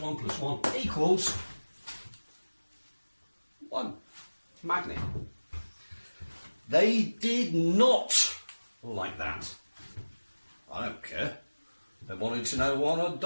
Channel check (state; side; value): inverted; both; correlation -1.00